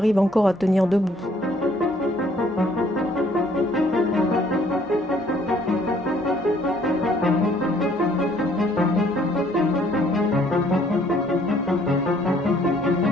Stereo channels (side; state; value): both; normal; correlation 0.62